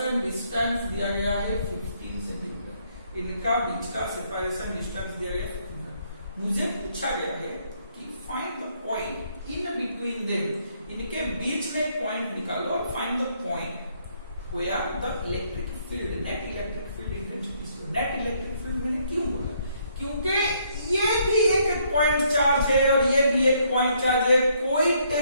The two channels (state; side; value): inverted; both; correlation -0.70